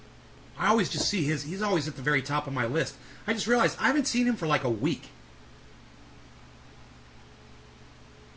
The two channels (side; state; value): both; identical; correlation 1.00